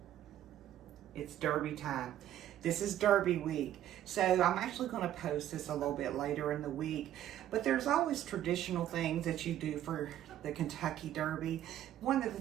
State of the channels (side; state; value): left; quieter; 12.0 dB